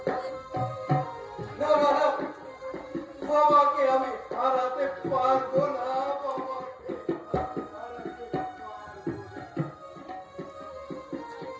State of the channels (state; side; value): identical; both; correlation 1.00